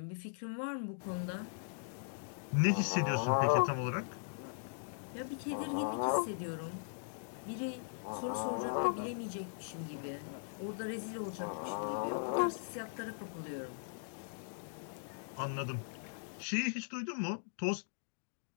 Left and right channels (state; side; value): silent; right; digital silence